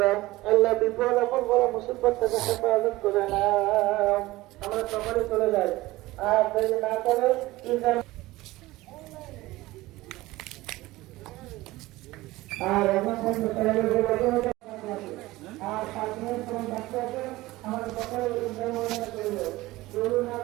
দাও। আল্লাহ বিপদ আপদ বড় মুসিবত থেকে হেফাজত করে না। আমরা সকলে চলে যাই, আর দেরি না করে আর এখন আর 5 মিনিট সময় বাকি আছে। আমাদের সকলে না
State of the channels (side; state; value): left; quieter; 18.8 dB